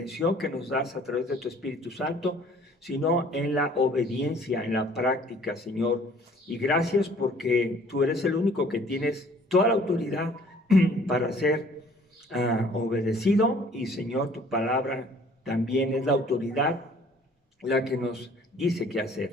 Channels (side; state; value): both; normal; correlation 0.55